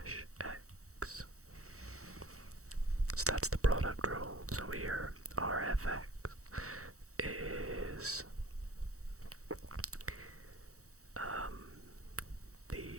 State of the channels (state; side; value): late; left; 0.65 ms